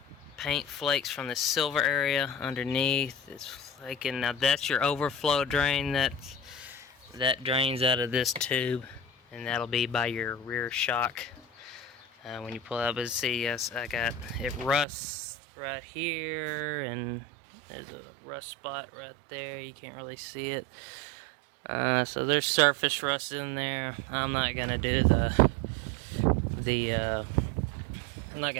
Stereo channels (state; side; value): drops out; left; at 14.9 s